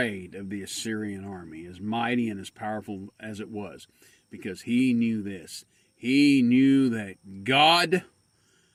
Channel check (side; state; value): both; identical; correlation 1.00